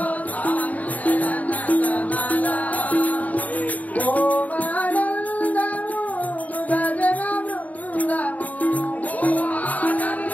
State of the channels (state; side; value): late; right; 0.073 ms